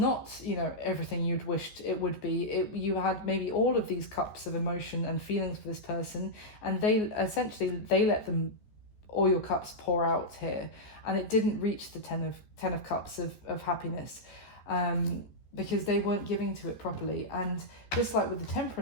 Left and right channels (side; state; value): right; late; 14 ms